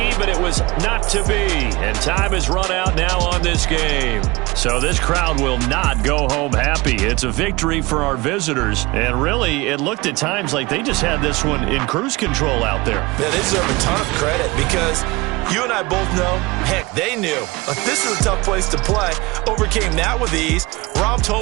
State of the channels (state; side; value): quieter; left; 22.6 dB